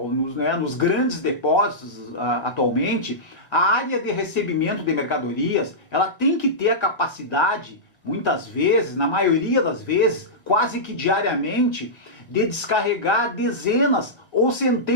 nos grandes depósitos atualmente, a área de recebimento de mercadorias, ela tem que ter a capacidade, muitas vezes, na maioria das vezes, quase que diariamente, de descarregar dezenas ou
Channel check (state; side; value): late; right; 1.7 ms